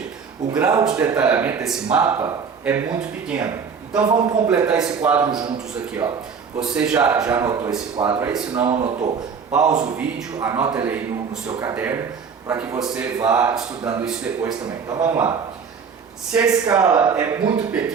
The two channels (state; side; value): quieter; left; 6.1 dB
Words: o grau de detalhamento desse mapa é muito pequeno. Então vamos completar esse quadro juntos aqui, ó. Você já anotou esse quadro aí? Se não anotou, pausa o vídeo, anota ele aí no seu caderno, para que você vá estudando isso depois também. Então vamos lá. Se a escala é muito